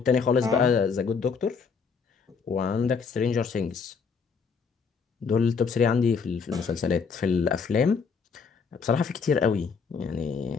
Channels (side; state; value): right; quieter; 5.6 dB